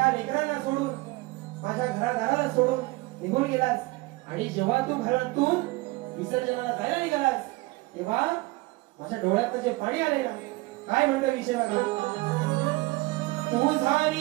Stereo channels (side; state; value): left; quieter; 21.8 dB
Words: लेकरांना सोडून माझ्या घरादाराला सोडून निघून गेलास आणि जेव्हा तू घरातून विसर्जनाला जायला निघालास तेव्हा माझ्या डोळ्यात जे पाणी आले ना, काय म्हणतो विषय बघा. तुझा